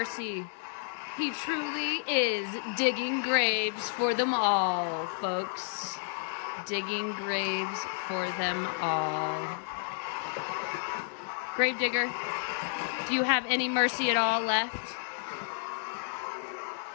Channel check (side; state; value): right; silent; digital silence